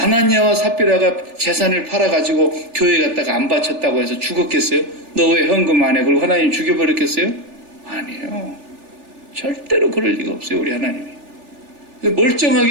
삽비라가 재산을 팔아가지고 교회 갔다가 안 바쳤다고 해서 죽었겠어요? 너 왜 헌금 안 해? 그리고 하나님 죽여버렸겠어요? 아니에요. 절대로 그럴 리가 없어요. 우리 하나님이.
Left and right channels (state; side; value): late; left; 3.4 ms